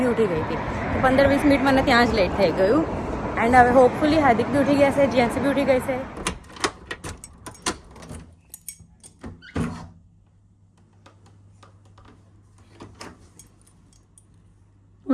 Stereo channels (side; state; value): both; identical; correlation 1.00